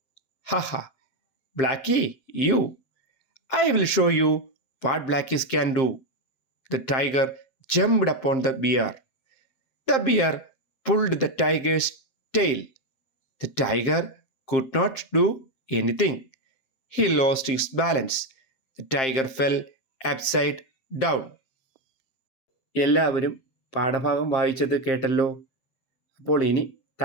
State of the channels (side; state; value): right; late; 7.6 ms